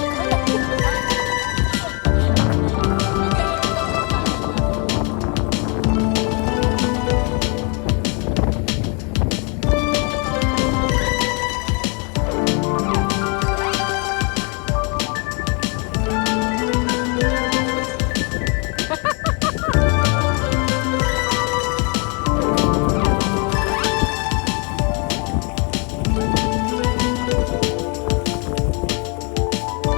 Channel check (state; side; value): quieter; right; 34.6 dB